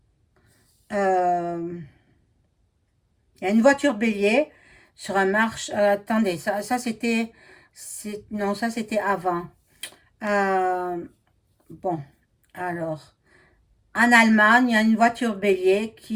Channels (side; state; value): both; identical; correlation 1.00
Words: il y a une voiture bélier sur un marche. Attendez, ça c'était, non, ça c'était avant. Euh, bon, alors, en Allemagne, il y a une voiture bélier